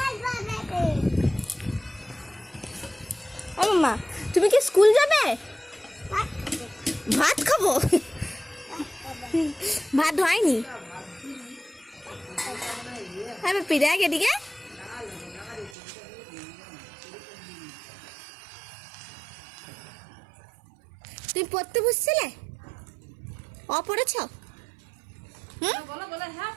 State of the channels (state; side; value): drops out; left; at 15.8 s